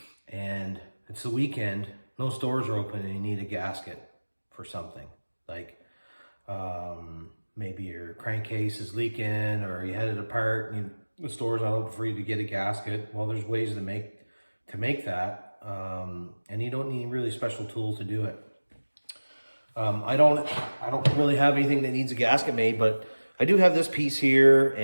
and it's the weekend, no stores are open, and you need a gasket for something. Like maybe your crankcase is leaking, or you had it apart and the store's not open for you to get a gasket. Well, there's ways to make that, and you don't need really special tools to do it. I don't really have anything that needs a gasket made, but I do have this piece here,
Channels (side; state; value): both; inverted; correlation -1.00